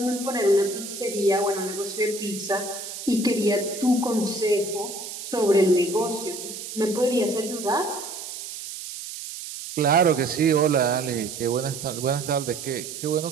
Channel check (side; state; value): right; noise; hiss, 9 dB below the sound